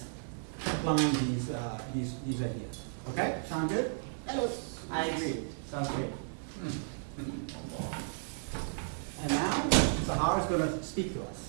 applying these ideas. Okay, sound good? Yes. I agree. Sounds great. And now, Sahar is going to speak to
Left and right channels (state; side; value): silent; left; 55 dB below the other